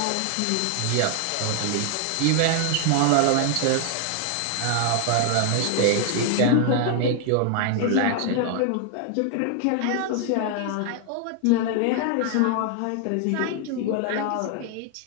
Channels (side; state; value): both; different; correlation 0.00